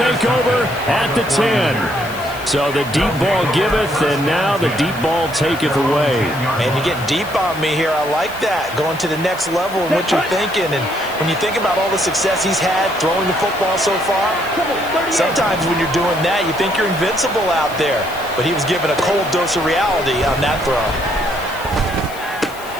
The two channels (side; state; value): left; noise; hiss, 18 dB below the sound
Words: over at the 10. So the deep ball giveth, and now the deep ball taketh away. Man, you're getting deep on me here. I like that. Going to the next level in what you're thinking. And when you think about all the success he's had throwing the football so far, sometimes when you're doing that, you think you're invincible out there. But he was given a cold dose of reality on that throw.